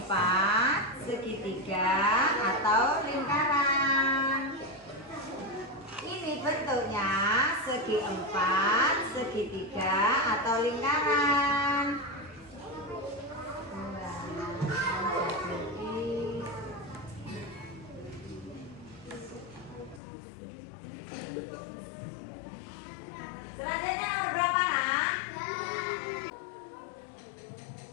segi 3 atau lingkaran. Ini bentuknya segi 4, segi 3 atau lingkaran. Selanjutnya nomor berapa, Nak?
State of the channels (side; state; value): right; drops out; at 20.0 s